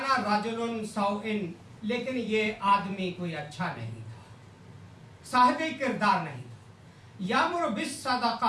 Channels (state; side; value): identical; both; correlation 1.00